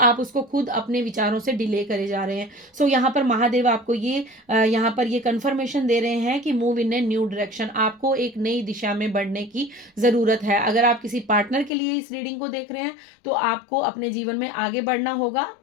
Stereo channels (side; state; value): right; drops out; at 11.7 s